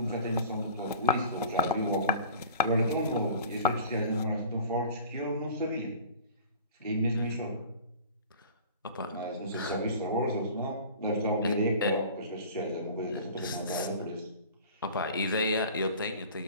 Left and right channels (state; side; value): inverted; both; correlation -0.43